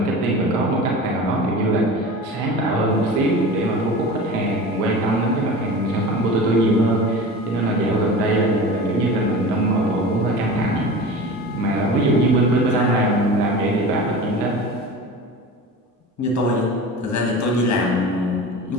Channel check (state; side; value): normal; both; correlation 0.34